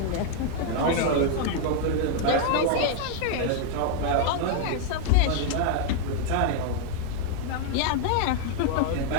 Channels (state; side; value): different; both; correlation 0.00